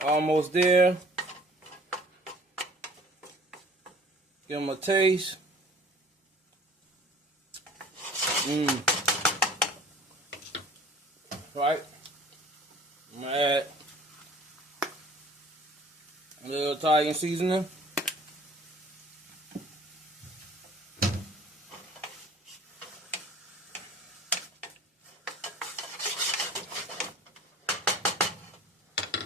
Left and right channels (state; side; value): normal; both; correlation 0.49